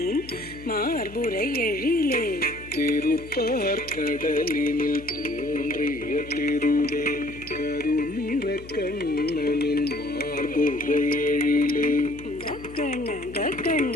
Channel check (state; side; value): noise; left; hum, 17 dB below the sound